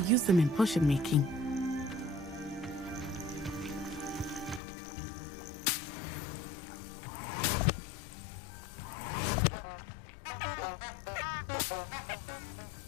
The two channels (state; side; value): drops out; right; at 4.6 s